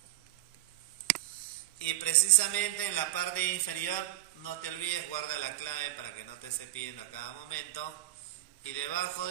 Y precisamente en la parte inferior, no te olvides, guarda la clave para que no te esté pidiendo a cada momento. Y debajo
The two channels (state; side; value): quieter; left; 15.7 dB